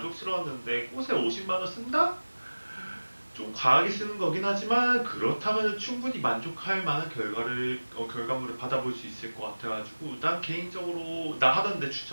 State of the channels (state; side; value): inverted; both; correlation -1.00